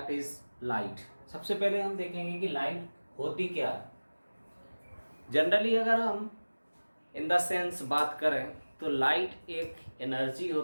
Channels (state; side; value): inverted; both; correlation -1.00